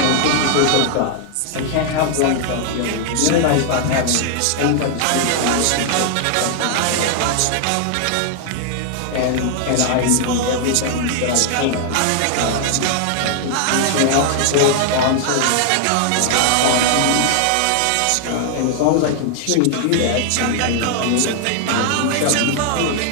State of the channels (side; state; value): both; different; correlation 0.00